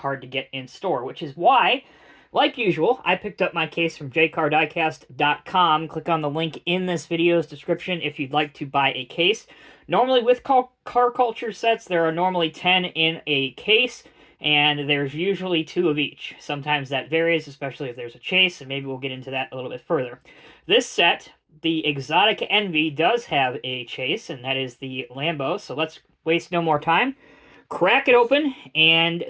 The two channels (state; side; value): identical; both; correlation 1.00